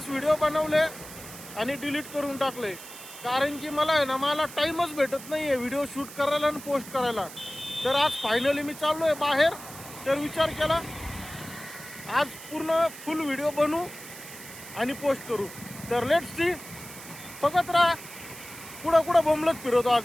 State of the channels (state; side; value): noise; right; hiss, 14 dB below the sound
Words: व्हिडिओ बनवले आणि डिलीट करून टाकले, कारण की मला आहे ना मला टाईमच भेटत नाही आहे व्हिडिओ शूट करायला आणि पोस्ट करायला. तर आज फायनली मी चाललो आहे बाहेर. तर विचार केला आज पूर्ण फुल व्हिडिओ बनवू आणि पोस्ट करू. तर लेट्स सी, बघत राहा. कुठं बोंबलत फिरवतो